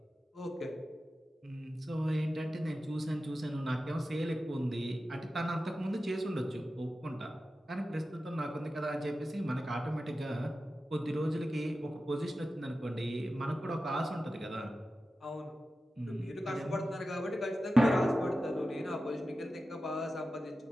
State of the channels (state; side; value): normal; both; correlation 0.93